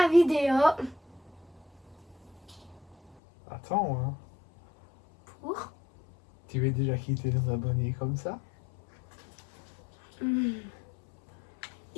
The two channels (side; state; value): right; drops out; at 3.2 s